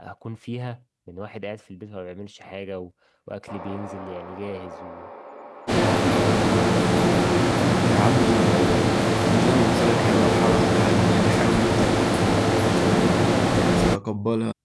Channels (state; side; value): identical; both; correlation 1.00